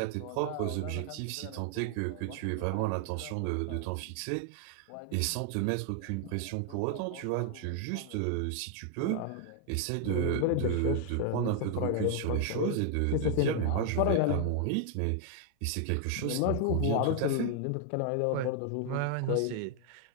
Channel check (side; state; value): both; different; correlation 0.00